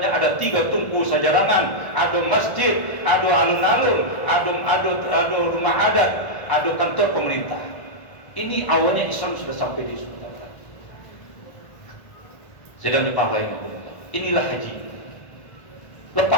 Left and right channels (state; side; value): late; right; 1.5 ms